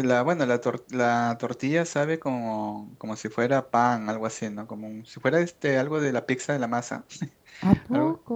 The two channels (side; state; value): both; identical; correlation 1.00